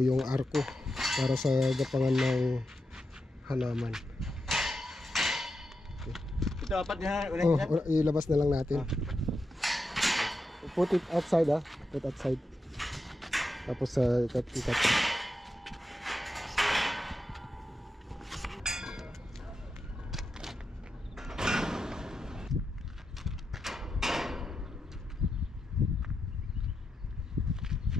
yung arco para sa gapangan ng halaman. Ito apat niya. Ilabas na lang natin. Put it outside, put outside. Tapos sa ikat.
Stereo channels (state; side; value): normal; both; correlation 0.87